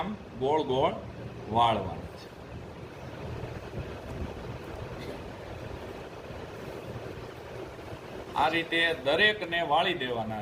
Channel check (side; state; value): both; identical; correlation 1.00